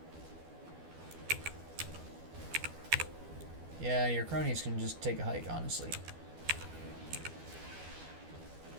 Yeah, your cronies can just take a hike, honestly.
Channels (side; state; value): left; late; 12 ms